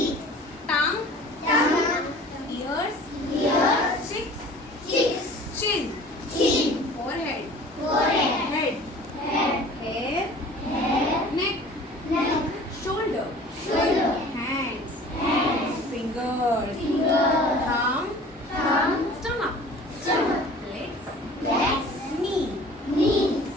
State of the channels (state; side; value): normal; both; correlation 0.46